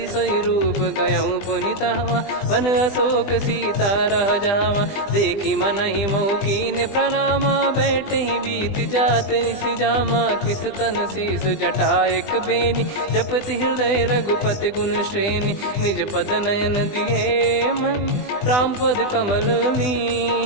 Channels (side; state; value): right; late; 20 ms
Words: सोई रूप गयऊँ पुनि तहवा, वन अशोक सीता रह जावा। देखी मनहि मोह कीन्ह प्रणामा, बैठे ही बीत जात निस जामा। कृस तन शीस जटा एक बेनी, जपति हृदय रघुपति गुण श्रेणी। निज पद नयन दिए मन, राम पद कमल